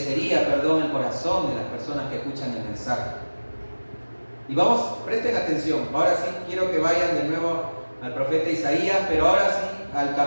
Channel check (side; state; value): both; inverted; correlation -1.00